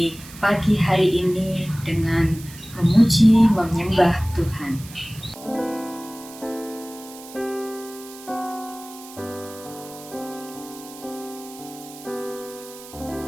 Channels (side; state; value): right; noise; hiss, 17 dB below the sound